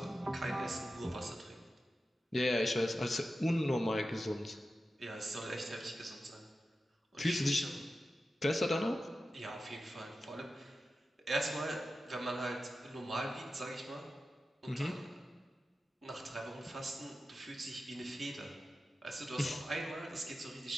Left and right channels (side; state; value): both; normal; correlation 0.92